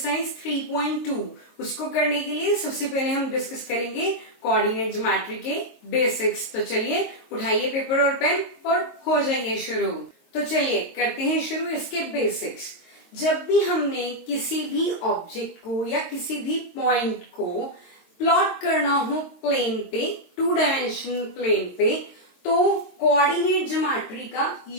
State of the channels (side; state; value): right; late; 22 ms